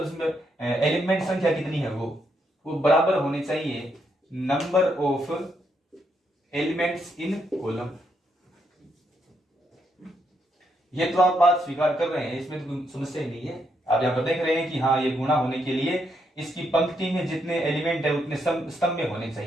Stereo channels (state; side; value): normal; both; correlation 0.78